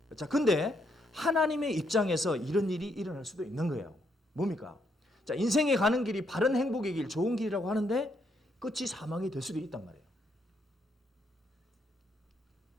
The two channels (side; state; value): both; normal; correlation 0.75